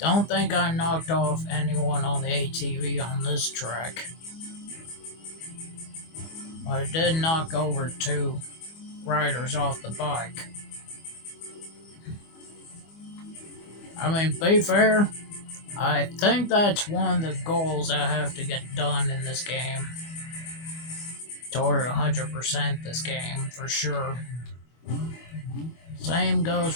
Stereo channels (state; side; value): late; right; 25 ms